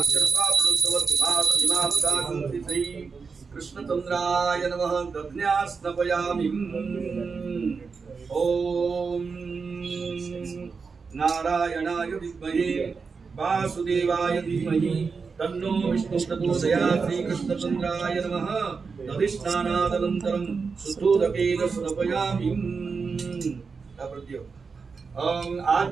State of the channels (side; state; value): left; quieter; 5.1 dB